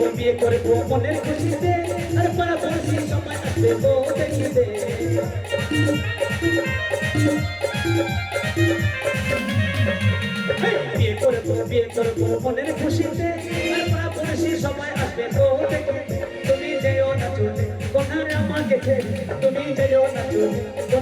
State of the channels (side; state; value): both; identical; correlation 1.00